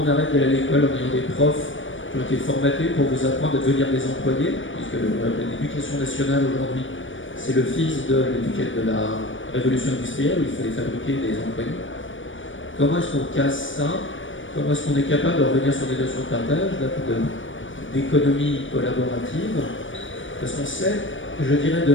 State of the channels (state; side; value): late; right; 0.56 ms